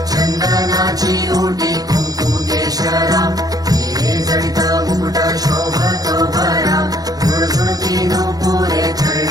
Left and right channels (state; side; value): late; left; 0.18 ms